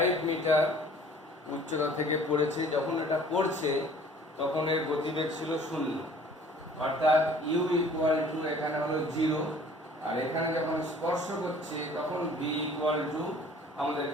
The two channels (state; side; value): normal; both; correlation 0.51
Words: মিটার উচ্চতা থেকে পড়েছে। যখন এটা পড়ছে তখন এর গতিবেগ ছিল 0, অর্থাৎ u ইকুয়াল টু এখানে হলো 0, আর এখানে যখন স্পর্শ করছে তখন v ইকুয়াল টু